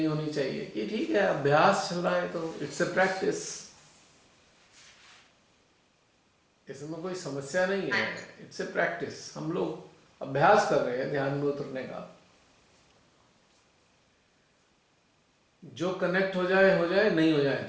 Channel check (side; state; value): both; identical; correlation 1.00